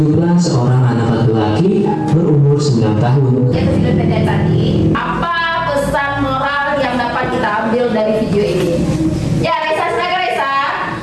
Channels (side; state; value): both; identical; correlation 1.00